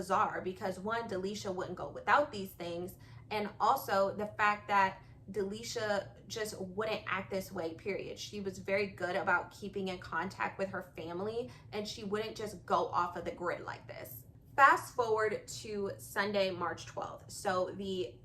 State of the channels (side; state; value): both; identical; correlation 1.00